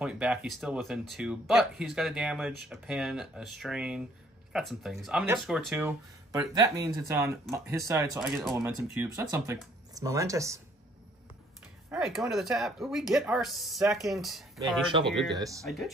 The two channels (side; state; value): both; normal; correlation 0.62